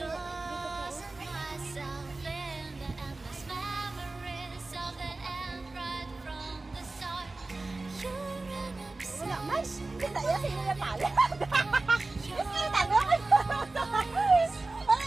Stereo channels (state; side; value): quieter; left; 3.2 dB